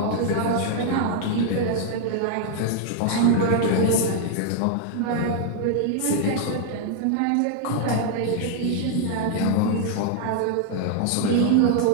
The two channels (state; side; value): different; both; correlation 0.00